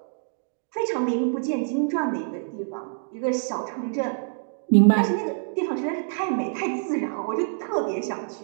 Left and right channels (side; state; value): left; silent; digital silence